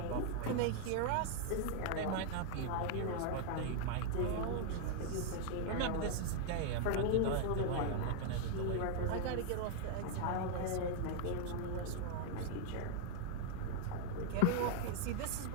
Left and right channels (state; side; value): different; both; correlation 0.00